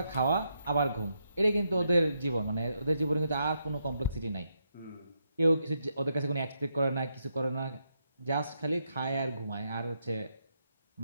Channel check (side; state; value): both; inverted; correlation -0.80